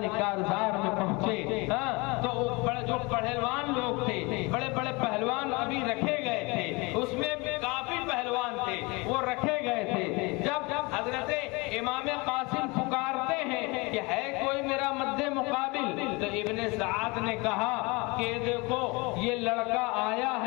کارزار میں پہنچے تو جو پہلوان لوگ تھے، بڑے بڑے پہلوان ابھی رکھے گئے تھے، اس میں کافی پہلوان تھے وہ رکھے گئے تھے۔ جب حضرت امام قاسم پکارتے ہیں کہ ہے کوئی میرا مد مقابل، تو ابن سعد نے کہا کہ دیکھو یہ لڑکا آیا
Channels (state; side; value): quieter; right; 26.4 dB